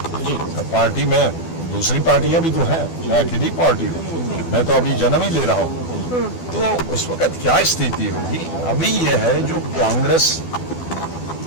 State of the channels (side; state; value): right; late; 12 ms